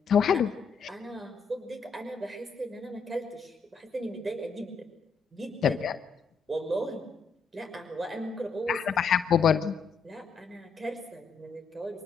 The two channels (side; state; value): right; quieter; 5.2 dB